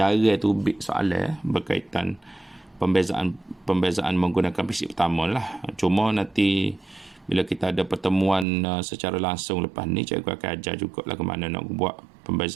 tu soalan berkaitan pembezaan menggunakan prinsip pertama lah. Cuma nanti bila kita ada pertemuan secara langsung lepas ni, cikgu akan ajar juga lah ke mana nak buat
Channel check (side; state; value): left; drops out; at 8.5 s